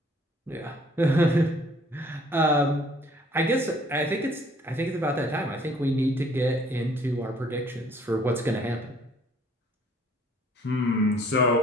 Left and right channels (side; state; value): both; normal; correlation 0.59